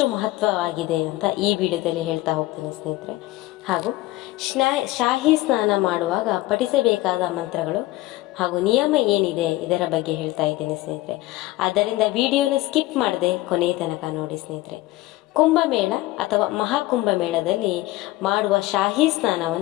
ಮಹತ್ವವಾಗಿದೆ ಅಂತ ಈ ವಿಡಿಯೋದಲ್ಲಿ ಹೇಳ್ತಾ ಹೋಗ್ತೀನಿ ಸ್ನೇಹಿತರೆ. ಹಾಗೂ ಶಾಹಿ ಸ್ನಾನ ಮಾಡುವಾಗ ಪಠಿಸಬೇಕಾದ ಮಂತ್ರಗಳು ಹಾಗೂ ನಿಯಮ ಏನಿದೆ ಇದರ ಬಗ್ಗೆ ಹೇಳ್ತಾ ಇದ್ದೀನಿ ಸ್ನೇಹಿತರೆ. ಆದ್ದರಿಂದ ವಿಡಿಯೋನ ಸ್ಕಿಪ್ ಮಾಡದೆ ಕೊನೆಯ ತನಕ ನೋಡಿ ಸ್ನೇಹಿತರೆ. ಕುಂಭಮೇಳ ಅಥವಾ ಮಹಾಕುಂಭಮೇಳದಲ್ಲಿ ಮಾಡುವ ಶಾಹಿ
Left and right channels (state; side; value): quieter; right; 18.1 dB